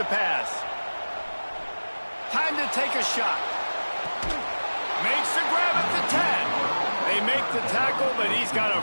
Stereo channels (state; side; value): inverted; both; correlation -1.00